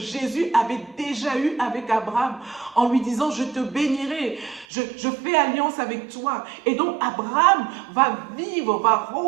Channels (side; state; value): left; drops out; at 4.7 s